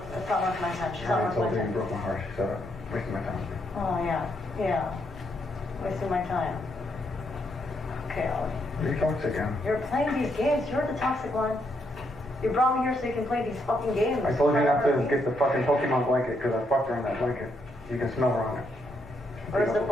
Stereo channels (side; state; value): both; normal; correlation 0.77